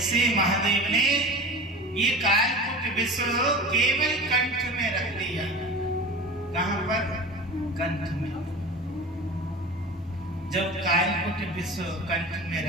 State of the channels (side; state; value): both; normal; correlation 0.34